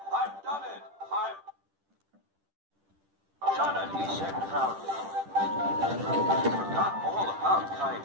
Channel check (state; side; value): late; left; 10 ms